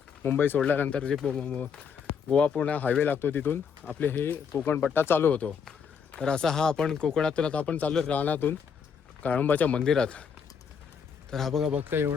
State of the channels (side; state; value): right; quieter; 6.6 dB